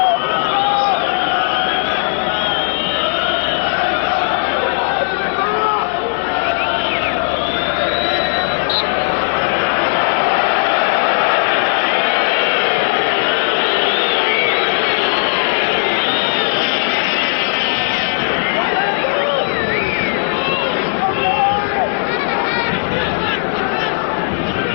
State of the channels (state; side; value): silent; right; digital silence